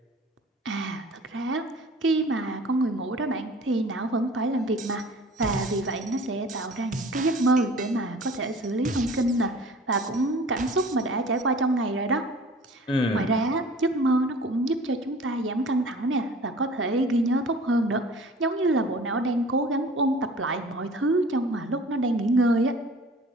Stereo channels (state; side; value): normal; both; correlation 0.46